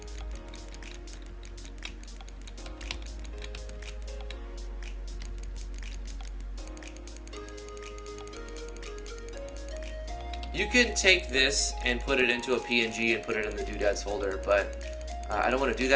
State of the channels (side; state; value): both; identical; correlation 1.00